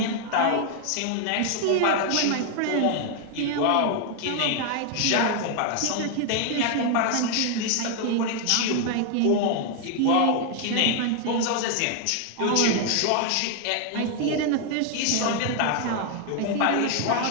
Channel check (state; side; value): different; both; correlation 0.00